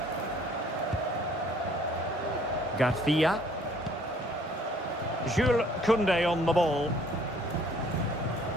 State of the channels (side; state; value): both; normal; correlation 0.58